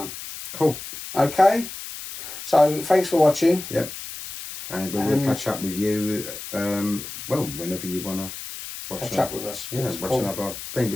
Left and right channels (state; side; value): noise; left; hiss, 10 dB below the sound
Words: Cool. Okay. So thanks for watching. Yep. And we'll catch up with you. Whenever you wanna catch up with us. Yeah, watch another thing.